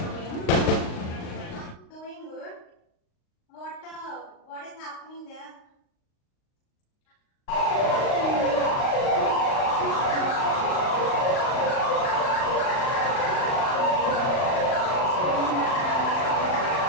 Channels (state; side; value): late; right; 38 ms